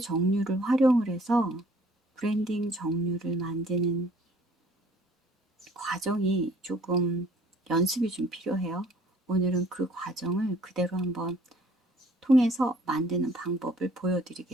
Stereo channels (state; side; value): normal; both; correlation 0.57